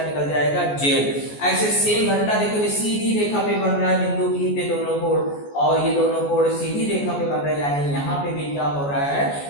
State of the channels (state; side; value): late; right; 14 ms